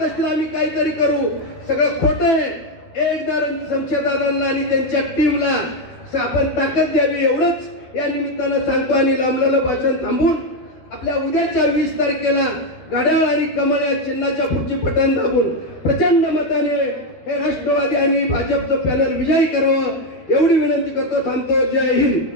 असतील आम्ही काहीतरी करू, सगळं खोटं आहे. एकदा शमशेरदादांना आणि त्यांच्या टीमला आपण ताकद द्यावी एवढंच या निमित्तानं सांगतो. आणि लांबलेलं भाषण थांबून आपल्या उद्याच्या 20 तारखेला घड्याळ आणि कमळ या चिन्हाच्या पुढची बटन दाबून प्रचंड मताने हे राष्ट्रवादी आणि भाजपचं पॅनल विजयी करावं एवढी विनंती करतो. थांबतो. जय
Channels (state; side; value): late; right; 13 ms